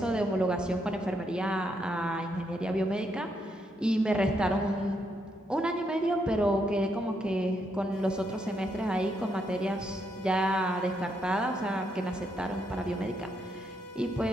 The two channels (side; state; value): both; normal; correlation 0.77